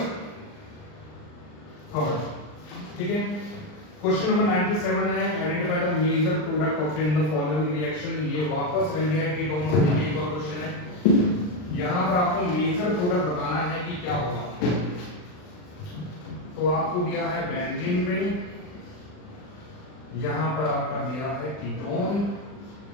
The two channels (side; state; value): right; late; 39 ms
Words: थर्ड, ठीक है। क्वेश्चन नंबर 97 है, identify the major product obtained in the following reaction. ये वापस एल्डिहाइड कीटोन से एक और क्वेश्चन है। यहाँ पर आपको मेजर प्रोडक्ट बताना है कि क्या होगा। तो आपको दिया है बेंजीन रिंग, यहाँ पर आपका दिया है कीटोन,